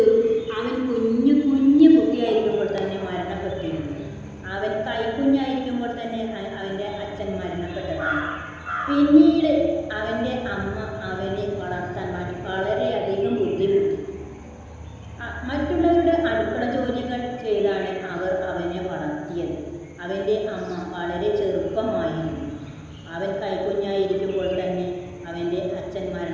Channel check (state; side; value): identical; both; correlation 1.00